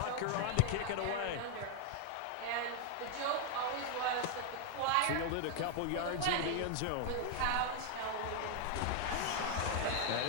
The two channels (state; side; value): different; both; correlation 0.00